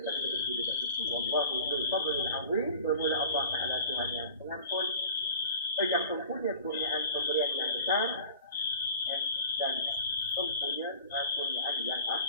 berdiri dekat situ, Wallahu dzul fadlil azim, bermula Allah Taala Tuhan yang pengampun, yang mempunyai kurniaan pemberian yang besar, dan mempunyai kurniaan yang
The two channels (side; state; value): both; inverted; correlation -0.42